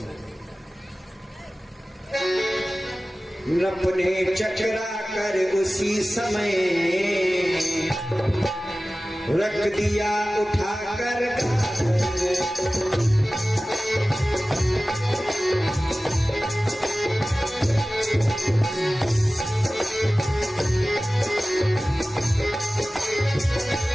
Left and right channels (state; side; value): normal; both; correlation 0.97